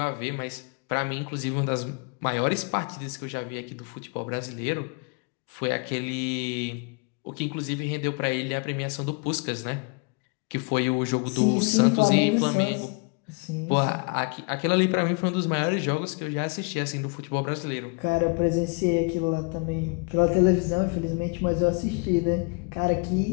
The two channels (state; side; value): quieter; right; 32.5 dB